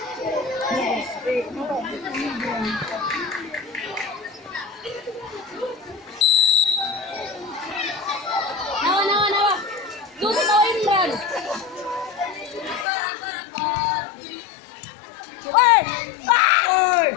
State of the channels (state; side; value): drops out; right; at 12.9 s